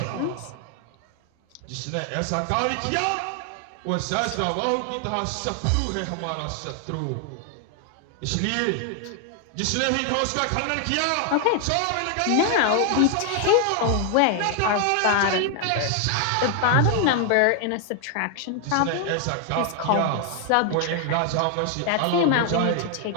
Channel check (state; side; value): different; both; correlation 0.00